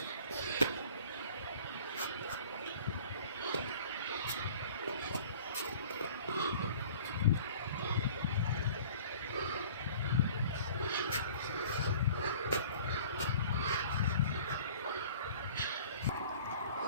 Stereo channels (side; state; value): both; inverted; correlation -0.48